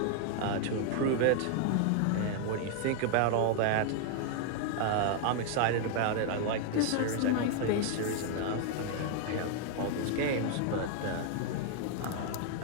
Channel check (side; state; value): both; different; correlation 0.00